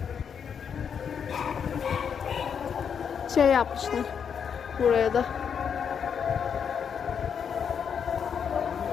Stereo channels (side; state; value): right; quieter; 7.3 dB